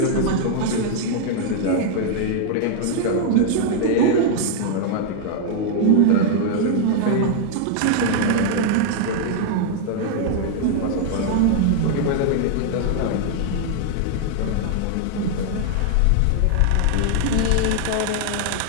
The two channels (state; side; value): different; both; correlation 0.00